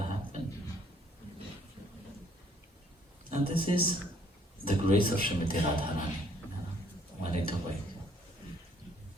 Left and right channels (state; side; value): normal; both; correlation 0.63